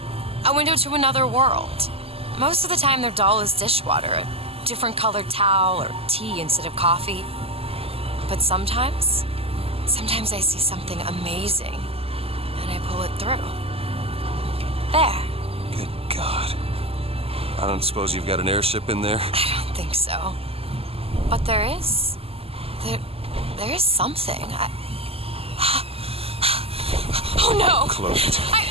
A window to another world. Most of the time they're dull as dishwater, a different colored towel or tea instead of coffee. But sometimes I see something amazing and I pull it through. There. Good God. I don't suppose you've got an airship in there? I don't think so. But there is. There is something. Oh no! Close it.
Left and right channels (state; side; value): late; left; 0.28 ms